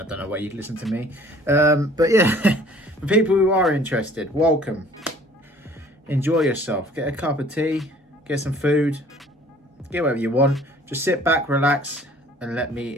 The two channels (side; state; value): both; normal; correlation 0.53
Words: don't know why you'd listen to me, but yeah, for people who are interested, welcome. Enjoy yourself, get a cup of tea, get some food, get whatever you want. Just sit back, relax, and let